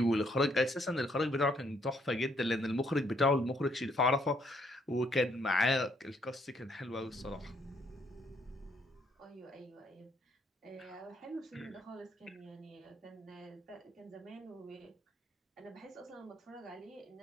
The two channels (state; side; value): normal; both; correlation 0.69